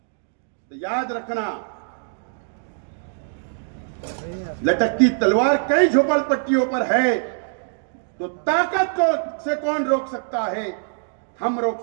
तो याद रखना, लटकती तलवार कई झोपड़पट्टियों पर है, तो ताकत को से कौन रोक सकता है? हम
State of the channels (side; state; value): left; silent; digital silence